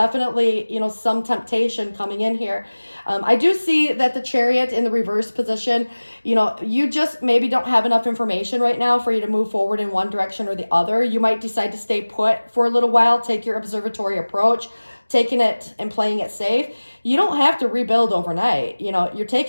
some temptation coming in here. I do see that the Chariot in the reverse position, you just maybe don't have enough information right now for you to move forward in one direction or the other. You might decide to stay put for a little while, take your observatory approach, taking it and playing it safe. You don't have to rebuild overnight. You're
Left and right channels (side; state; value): both; inverted; correlation -1.00